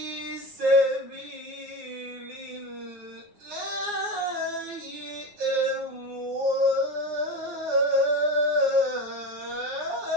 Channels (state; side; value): late; left; 9.6 ms